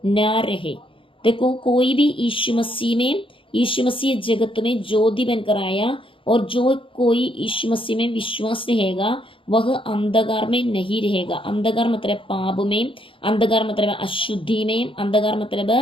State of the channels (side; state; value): right; late; 0.25 ms